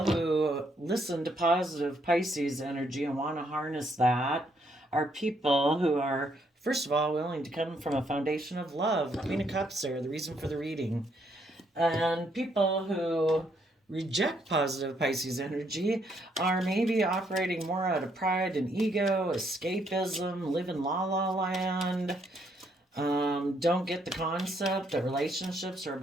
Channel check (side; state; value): both; normal; correlation 0.72